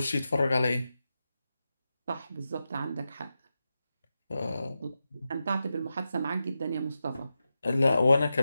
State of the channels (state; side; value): inverted; both; correlation -0.90